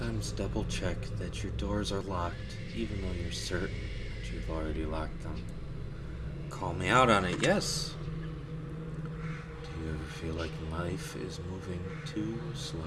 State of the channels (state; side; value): identical; both; correlation 1.00